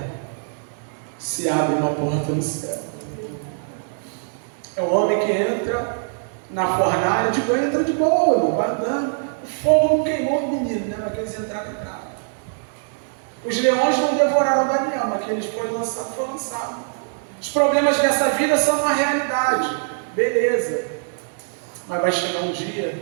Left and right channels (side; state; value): left; silent; digital silence